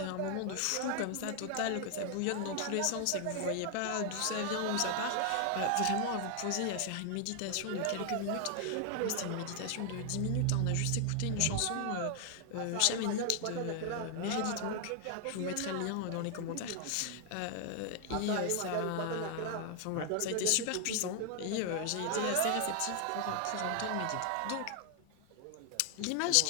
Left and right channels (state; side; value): different; both; correlation 0.00